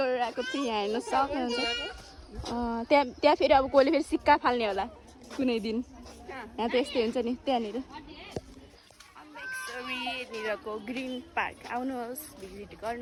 आएको थिएँ यहाँ हेर्न सक्नुहुन्छ त्यहाँ फेरि अब कोहीले फेरि सिक्का फाल्ने होला कुनै दिन यहाँ त यस्तै हुन्छ नि त्यहाँनिर अम्बिकचोरीनिरको ग्रिन पार्क आउनुहोस् भिजिट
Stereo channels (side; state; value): both; identical; correlation 1.00